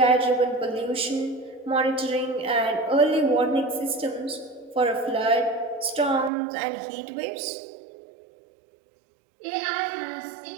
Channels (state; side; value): drops out; left; at 6.3 s